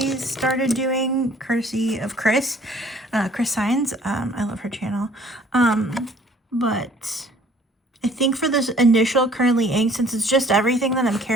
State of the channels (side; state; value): both; normal; correlation 0.55